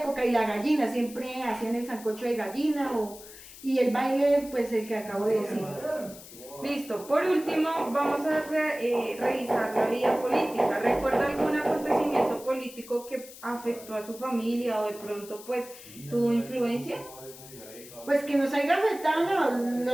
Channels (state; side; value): noise; left; hiss, 17 dB below the sound